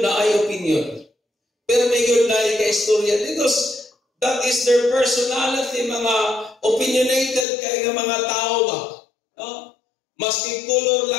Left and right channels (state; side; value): drops out; right; at 7.5 s